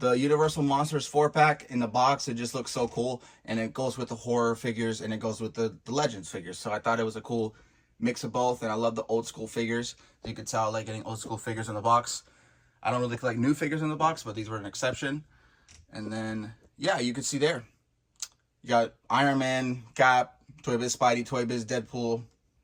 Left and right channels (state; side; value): identical; both; correlation 1.00